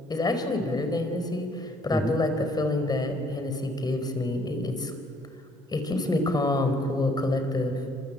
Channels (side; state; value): both; normal; correlation 0.63